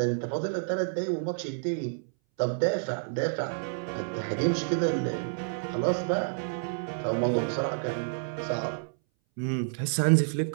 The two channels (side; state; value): left; silent; 58 dB below the other